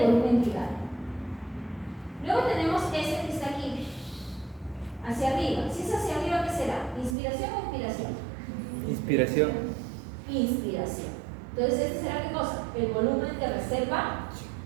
volumen tidal. Luego tenemos este que está aquí, hacia arriba. Si es hacia arriba, ¿qué será? ¿Inspiración o expiración? Inspiración. Inspiración. Entonces, ¿este será qué cosa? El volumen de reserva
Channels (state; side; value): drops out; left; at 7.2 s